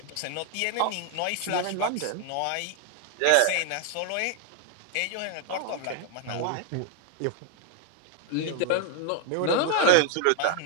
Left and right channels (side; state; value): both; different; correlation 0.01